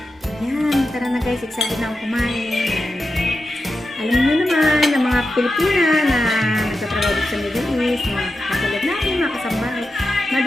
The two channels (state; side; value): normal; both; correlation 0.90